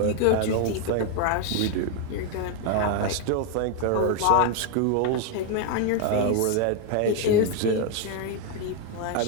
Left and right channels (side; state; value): both; different; correlation 0.01